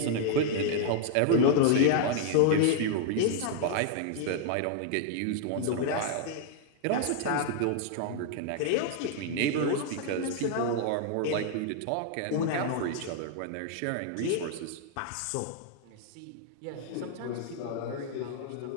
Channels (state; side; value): different; both; correlation 0.00